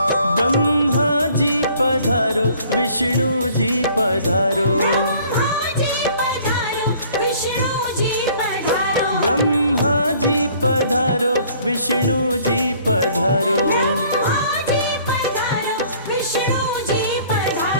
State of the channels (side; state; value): both; inverted; correlation -0.56